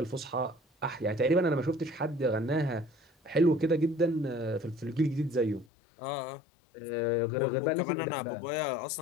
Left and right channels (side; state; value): right; drops out; at 5.7 s